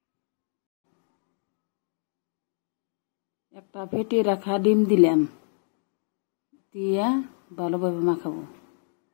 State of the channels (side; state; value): right; silent; digital silence